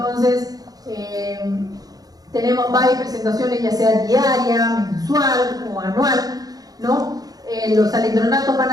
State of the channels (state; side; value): late; left; 0.18 ms